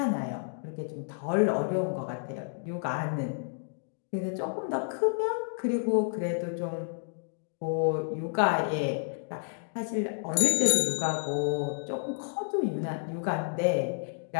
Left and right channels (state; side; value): silent; right; digital silence